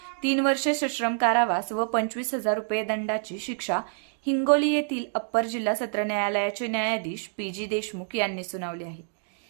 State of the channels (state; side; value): silent; left; 60 dB below the other